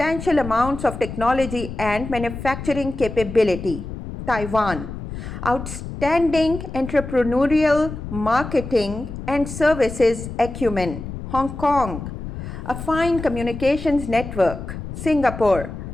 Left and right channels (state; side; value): noise; left; rumble, 9 dB below the sound